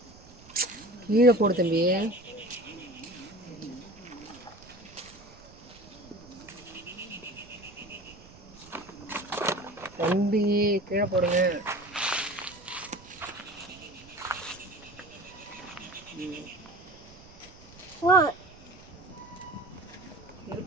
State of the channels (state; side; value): noise; right; rumble, 22 dB below the sound